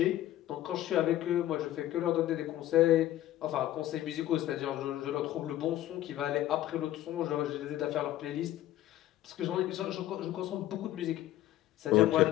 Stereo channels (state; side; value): quieter; right; 13.9 dB